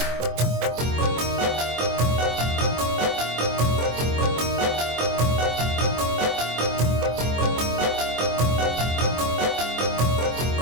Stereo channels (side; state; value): left; late; 24 ms